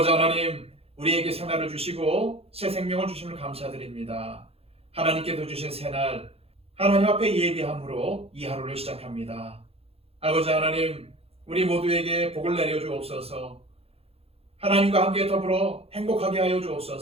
하나님, 우리에게 새날을 주시고 새 생명을 주심을 감사드립니다. 하나님께서 주신 새날, 하나님 앞에 예비함으로 이 하루를 시작합니다. 아버지 하나님, 우리 모두에게 복을 내려 주옵소서. 하나님과 함께 더불어 행복하게 하여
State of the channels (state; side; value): late; left; 0.29 ms